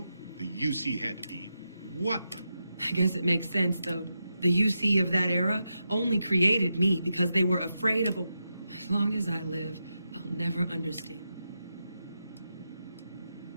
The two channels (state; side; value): inverted; both; correlation -0.87